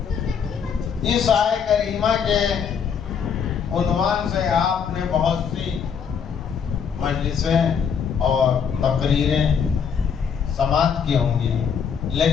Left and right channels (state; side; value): quieter; right; 7.0 dB